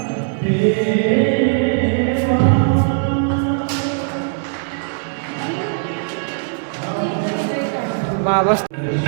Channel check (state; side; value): silent; left; 67 dB below the other